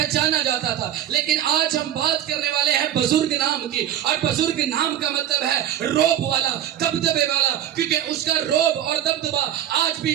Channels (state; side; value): quieter; left; 11.2 dB